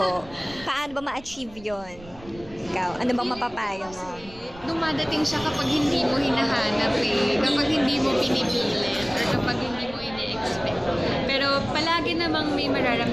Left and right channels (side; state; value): right; noise; rumble, 20 dB below the sound